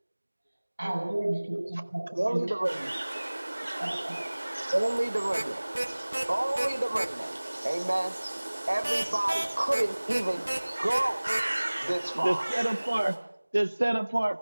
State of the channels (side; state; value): both; inverted; correlation -1.00